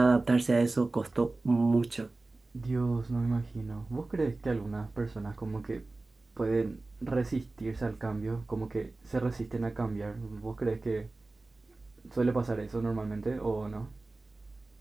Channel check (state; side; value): quieter; left; 3.2 dB